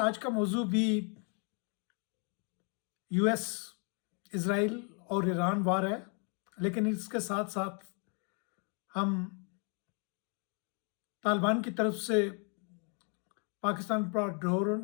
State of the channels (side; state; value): right; quieter; 38.7 dB